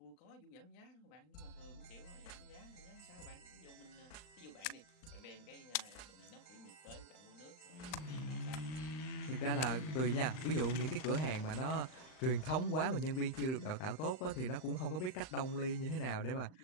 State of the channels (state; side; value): late; right; 39 ms